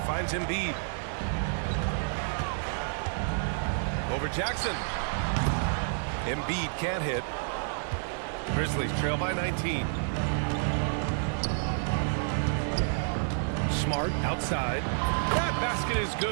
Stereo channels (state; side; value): silent; left; 56 dB below the other